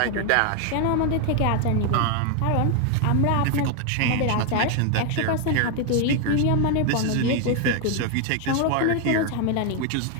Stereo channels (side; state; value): both; different; correlation 0.01